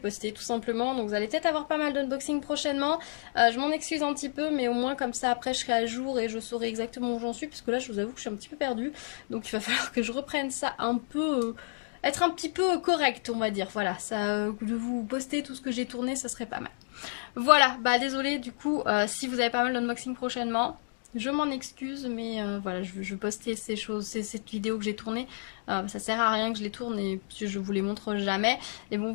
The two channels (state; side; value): silent; right; digital silence